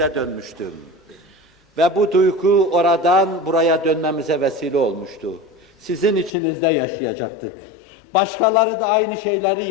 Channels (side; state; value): right; drops out; at 6.3 s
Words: dönmüştü. Ve bu duygu oradan buraya dönmemize vesile olmuştu. Sizin içinizde yaşayacaktık. Başkaları da aynı şeyleri